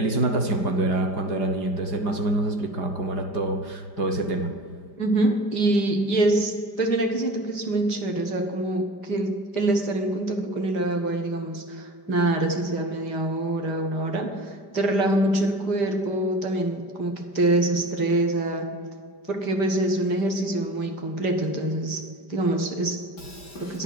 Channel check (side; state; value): right; late; 5.0 ms